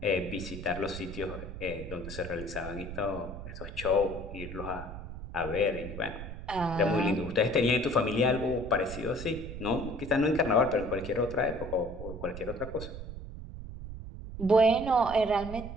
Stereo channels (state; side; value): noise; right; rumble, 10 dB below the sound